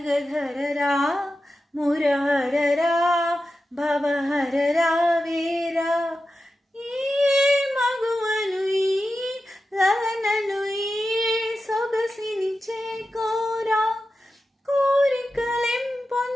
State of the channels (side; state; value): both; normal; correlation 0.91